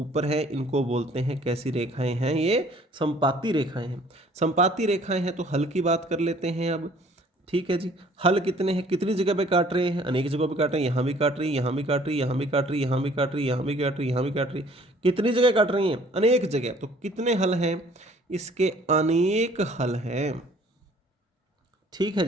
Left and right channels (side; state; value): both; normal; correlation 0.56